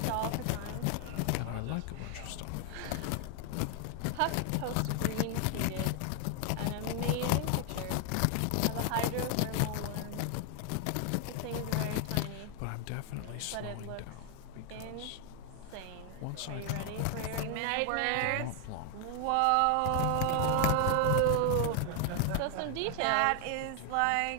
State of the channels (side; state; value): both; different; correlation 0.00